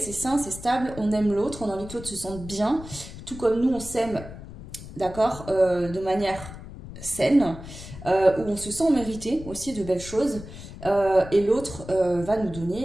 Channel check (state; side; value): noise; left; rumble, 13 dB below the sound